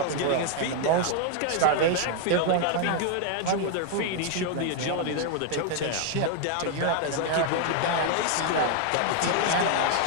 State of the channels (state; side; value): different; both; correlation 0.00